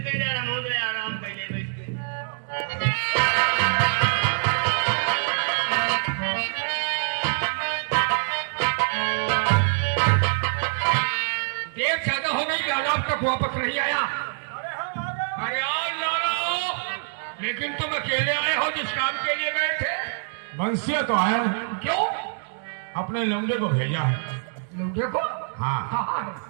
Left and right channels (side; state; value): left; silent; digital silence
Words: पे आराम कर ले बैठ के। देर ज्यादा हो गई, लाला अब तक वापस नहीं आया। अरे आओ लाला, लेकिन तुम अकेले आए हो जिस काम के लिए गए थे? बंसिया तो आया हूँ। क्यों? अपने लौंडे को भेजा है। लौंडे को? हाँ